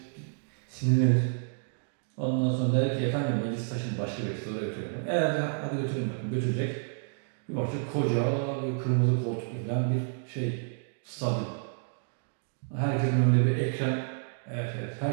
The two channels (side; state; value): left; silent; digital silence